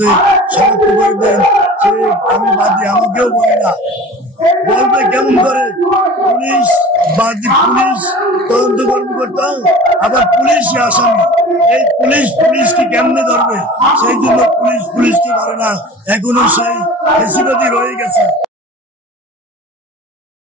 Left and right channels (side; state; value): both; normal; correlation 0.40